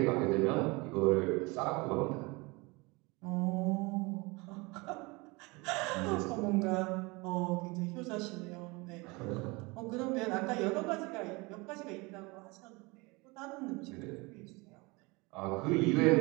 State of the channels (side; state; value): left; quieter; 25.6 dB